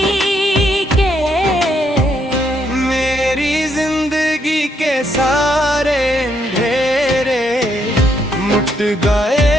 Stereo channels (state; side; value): normal; both; correlation 0.74